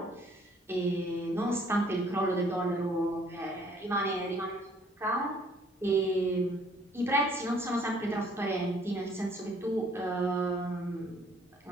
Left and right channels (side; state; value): both; normal; correlation 0.60